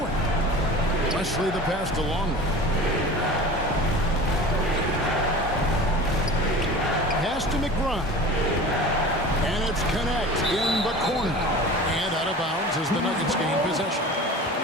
Wesley the pass to Longley. Pass to McBride. And it's Connect in the corner. And out of bounds as the Nuggets gain possession.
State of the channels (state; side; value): normal; both; correlation 0.37